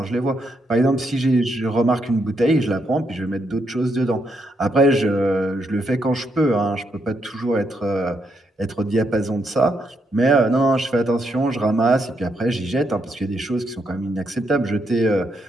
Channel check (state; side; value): normal; both; correlation 0.78